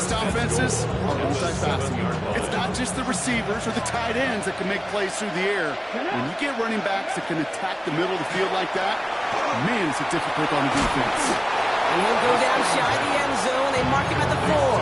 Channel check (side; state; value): both; identical; correlation 1.00